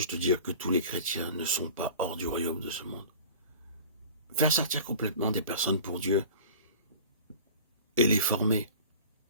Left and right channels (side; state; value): both; inverted; correlation -0.41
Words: de dire que tous les chrétiens ne sont pas hors du royaume de ce monde. Faire sortir complètement des personnes pour Dieu et les former,